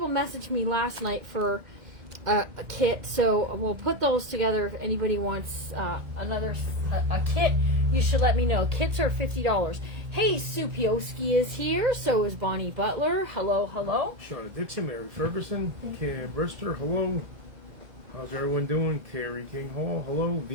message me last night for a kit. So we'll put those together. If anybody wants a kit, you should let me know. Kits are $50. Hey, Sue Pioski is here. So is Bonnie Butler. Hello. Shauna Dixon, Mary Ferguson, Kim Brister, hello. How's everyone doing? Carrie King Hall, hello.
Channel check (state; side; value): late; left; 1.9 ms